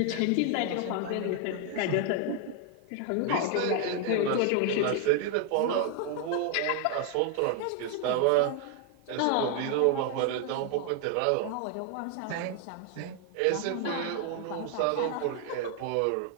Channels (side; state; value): both; different; correlation 0.00